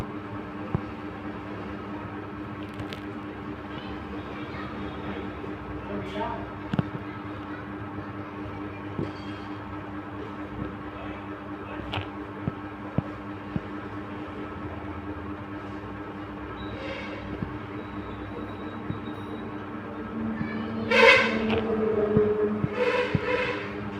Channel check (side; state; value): both; identical; correlation 1.00